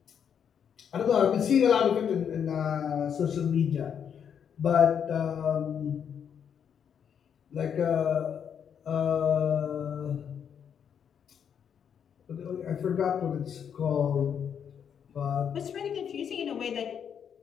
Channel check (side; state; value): right; quieter; 7.9 dB